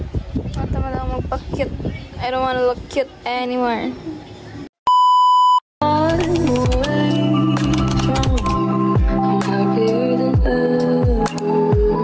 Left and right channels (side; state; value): both; identical; correlation 1.00